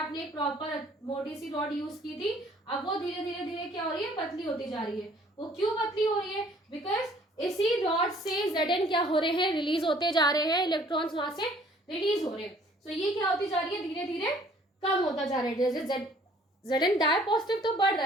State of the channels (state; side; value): normal; both; correlation 0.57